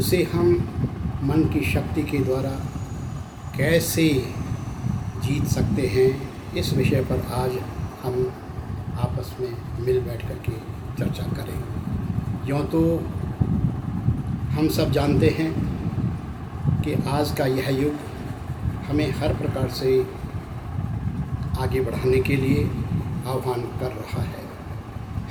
हम मन की शक्ति के द्वारा कैसे जीत सकते हैं, इस विषय पर आज हम आपस में मिल बैठ कर के चर्चा करें। यूँ तो हम सब जानते हैं कि आज का यह युग हमें हर प्रकार से आगे बढ़ाने के लिए आह्वान कर रहा है।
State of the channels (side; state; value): both; identical; correlation 1.00